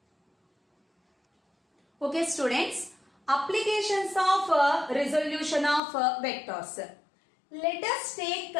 Okay students, applications of resolution of vectors. Let us take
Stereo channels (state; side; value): drops out; right; at 5.8 s